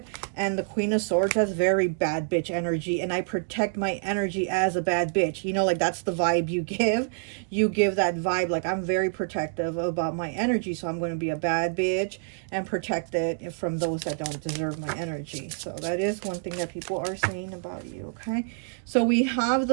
and the Queen of Swords, has very bad bitch energy, and I protect my energy as a bad bitch, you know, like that's the vibe you give. You give that vibe, like I'm very protective about my energy, so I'm going to be a bad bitch and protect it from those that don't deserve my energy. So that is one thing that people are saying about you, okay? So we have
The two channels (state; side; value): silent; left; digital silence